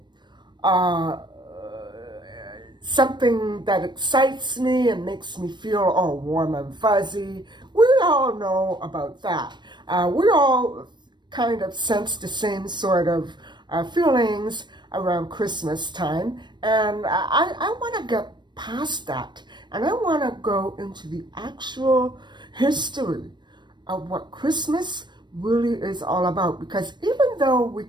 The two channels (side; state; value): left; late; 0.22 ms